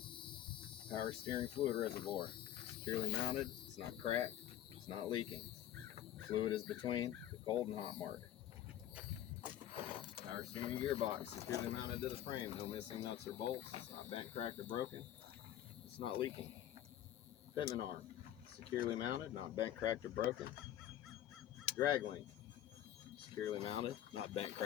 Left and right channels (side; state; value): right; quieter; 11.9 dB